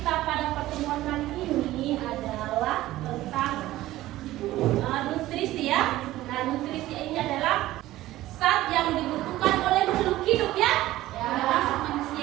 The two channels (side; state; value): left; quieter; 15.9 dB